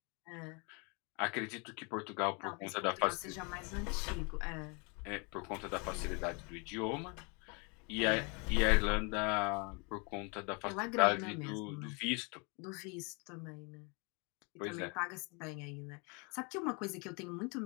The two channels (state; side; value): quieter; right; 32.5 dB